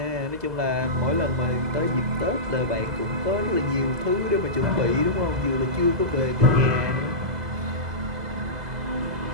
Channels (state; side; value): late; left; 2.0 ms